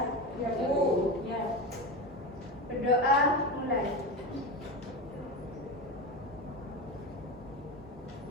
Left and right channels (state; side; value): normal; both; correlation 0.21